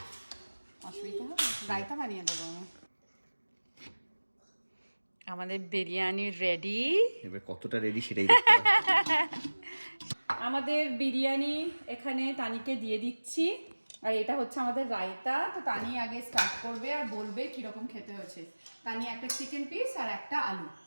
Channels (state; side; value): inverted; both; correlation -1.00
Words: অসুবিধা হবে, রায়তা বানিয়ে দেবো আমি। আমাদের বিরিয়ানি রেডি। এবার কতটা রেডি সেটাই দেখতে হবে। আমাদের বিরিয়ানি এখানে তানিকে দিয়ে দিচ্ছি, আর এটা হচ্ছে আমাদের রায়তা। তো তানি আগে স্টার্ট করবে আর বলবে কিরকম খেতে হয়েছে। তানি একটা চিকেন পিস আর একটা আলু।